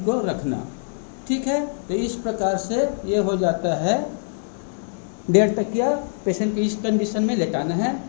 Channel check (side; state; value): right; silent; digital silence